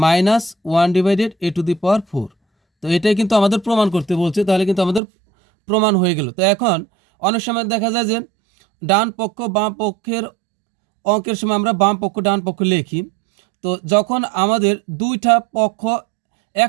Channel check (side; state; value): left; drops out; at 5.0 s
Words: -1/a⁴। তো এটাই কিন্তু আমাদের প্রমাণ করতে বলছে, তাহলে কিন্তু আমাদের প্রমাণ হয়ে গেল। তো এখন অনেক সময় দেখা যায় যে ডান পক্ষ বাম পক্ষের অঙ্কের সময় আমরা বাম পক্ষ ডান পক্ষ লিখি, তো যখন আমাদের দুইটা পক্ষ